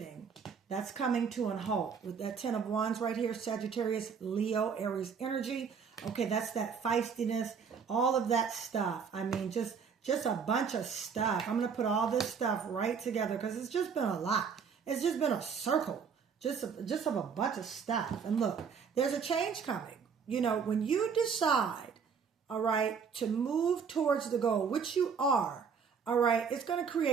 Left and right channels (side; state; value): left; quieter; 6.3 dB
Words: That's coming to a halt with that 10 of Wands right here, Sagittarius, Leo, Aries energy. Okay, that's that feistiness, all of that stuff. I mean, just a bunch of stuff. I'm going to put all this stuff right together because it's just been a lot. It's just been a circle, just of a bunch of stuff. And look, there's a change coming. You know, when you decide, all right, to move towards the goal, which you are, all right, it's going to